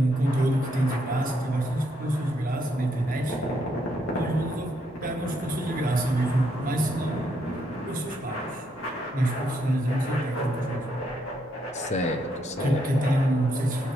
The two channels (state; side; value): normal; both; correlation 0.75